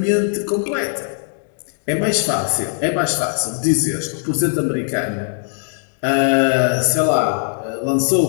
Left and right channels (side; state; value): right; silent; digital silence